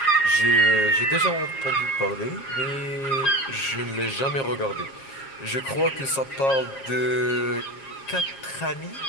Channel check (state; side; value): late; right; 7.4 ms